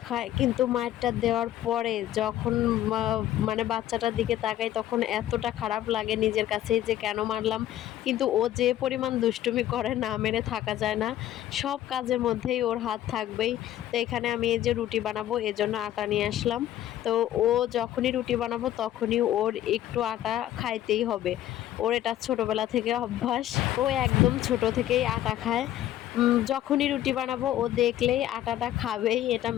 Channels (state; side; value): quieter; right; 12.8 dB